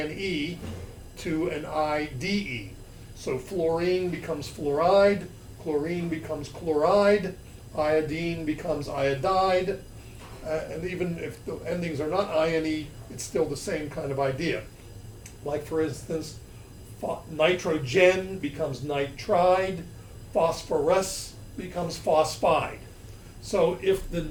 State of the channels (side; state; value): both; identical; correlation 1.00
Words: to an IDE. So fluorine becomes fluoride, chlorine becomes chloride, iodine becomes iodide, and even if the endings are not INE, it's still the same kind of idea. Like for instance, nitrogen becomes nitride, phosphorus becomes phosphide. So if the